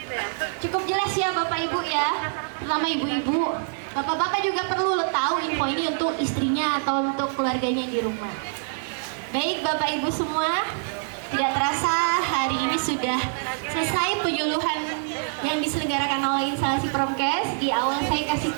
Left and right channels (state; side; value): silent; left; digital silence